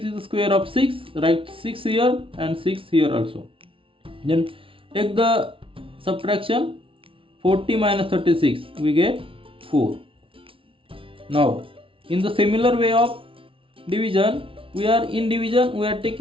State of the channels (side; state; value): left; late; 0.25 ms